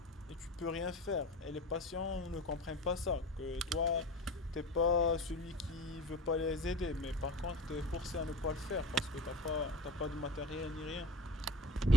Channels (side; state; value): both; normal; correlation 0.37